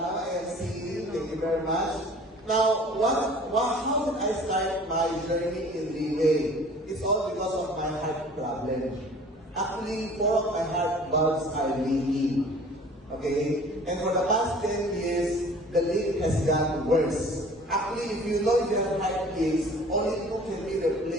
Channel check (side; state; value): both; normal; correlation 0.48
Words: MC? Thank you very much. Now, how did I start my journey in Greenway? It's all because of my heart problem. Actually, 4 of my heart valves are leaking. Okay? And for the past 10 years, the leak has gotten worse. Actually, if you know your heart leaks, only 2 can be